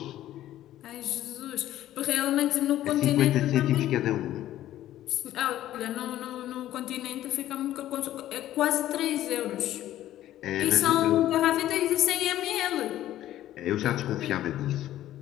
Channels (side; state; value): right; quieter; 13.3 dB